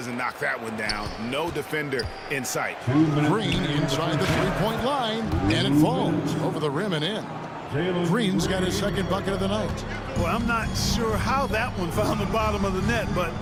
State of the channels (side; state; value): both; identical; correlation 1.00